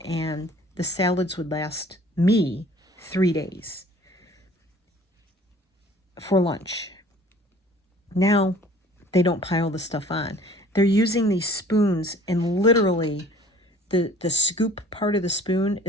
and the salads would last me 3 days for lunch. Now, they don't pile the stuff on. They're using these spoons, and literally the scoop part of the spoon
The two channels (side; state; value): both; normal; correlation 0.51